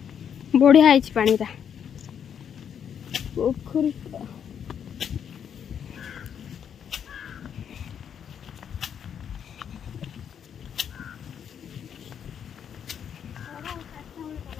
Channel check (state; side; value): quieter; right; 8.3 dB